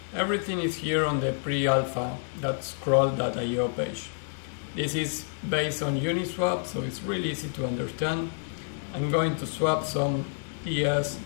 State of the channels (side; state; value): right; silent; digital silence